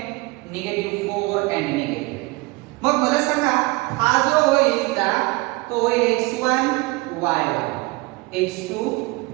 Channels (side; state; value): left; quieter; 23.7 dB